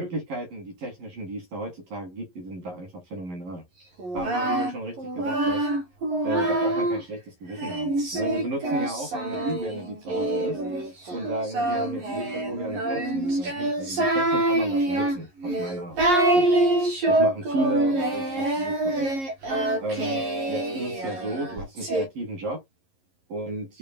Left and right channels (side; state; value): left; late; 11 ms